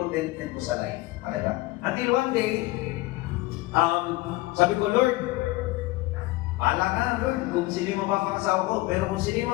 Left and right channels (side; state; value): right; quieter; 19.9 dB